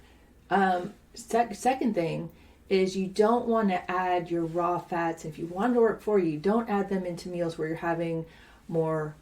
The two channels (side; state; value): both; identical; correlation 1.00